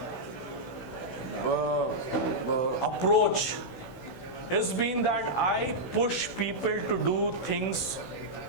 approach has been that I push people to do things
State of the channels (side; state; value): right; late; 16 ms